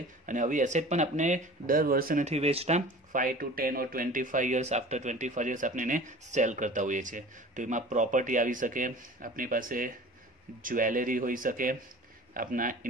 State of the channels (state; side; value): normal; both; correlation 0.42